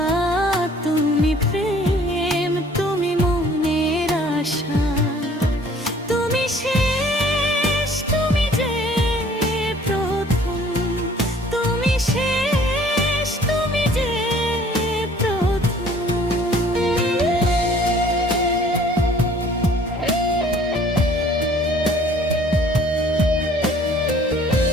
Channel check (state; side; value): normal; both; correlation 0.55